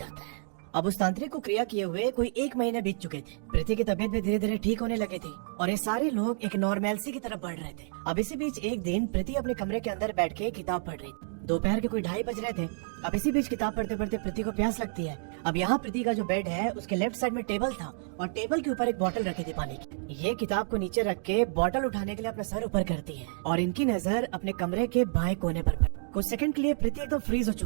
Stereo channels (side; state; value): left; silent; digital silence